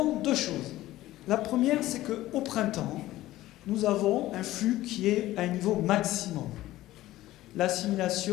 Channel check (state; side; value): quieter; right; 15.8 dB